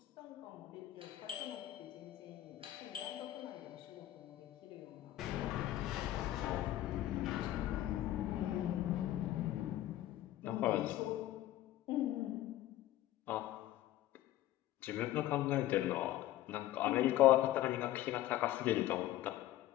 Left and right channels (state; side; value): quieter; right; 14.3 dB